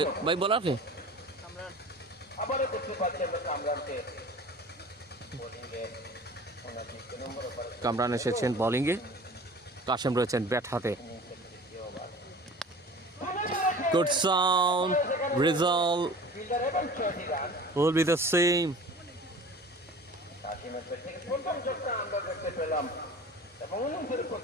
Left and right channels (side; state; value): both; normal; correlation 0.41